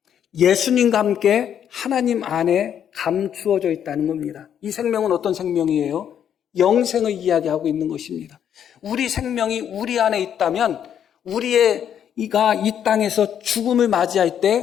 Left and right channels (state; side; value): quieter; right; 9.1 dB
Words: 예수님과 함께 하나님 안에 감추어져 있다는 겁니다. 이 생명은 어떤 생명이에요? 영생을 이야기하고 있는 것입니다. 우리 생명이 우리 안에 있다면 우리가 이 땅에서 죽음을 맞이할